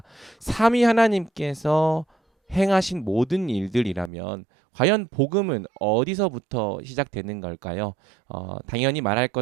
삼위 하나님께서 행하신 모든 일들이라면 과연 복음은 어디서부터 시작되는 걸까요? 당연히 말할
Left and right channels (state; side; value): drops out; left; at 4.1 s